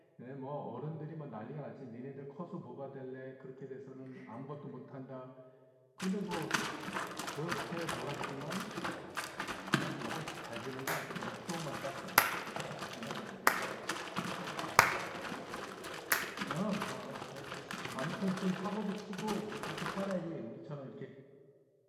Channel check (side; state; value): both; identical; correlation 1.00